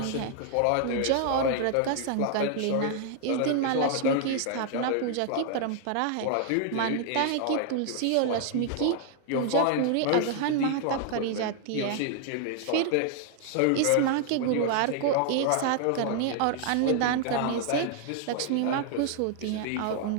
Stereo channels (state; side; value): different; both; correlation 0.00